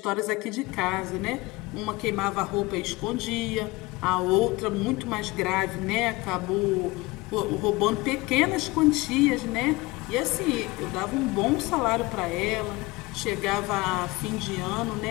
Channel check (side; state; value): right; quieter; 22.2 dB